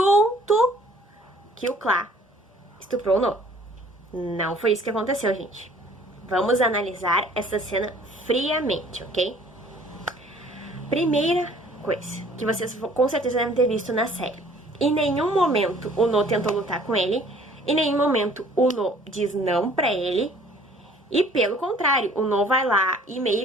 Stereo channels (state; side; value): normal; both; correlation 0.55